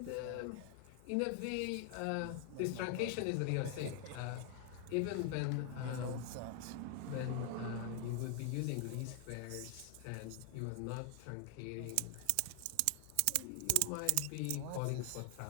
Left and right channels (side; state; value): both; different; correlation 0.00